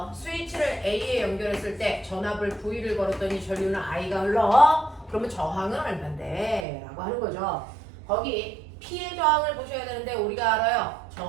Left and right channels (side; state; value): left; drops out; at 6.7 s